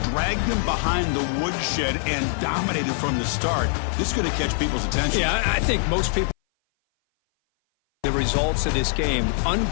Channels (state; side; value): silent; right; 58 dB below the other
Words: dragged them behind the woodshed and dominated from the start. This is going to catch people's attention. Yeah, I think most people the results of this game.